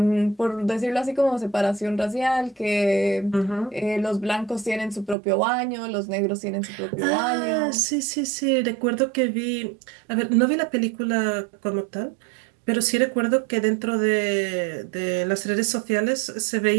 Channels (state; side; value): drops out; left; at 5.2 s